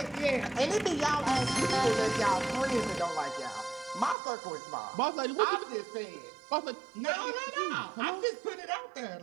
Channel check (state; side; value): drops out; left; at 4.2 s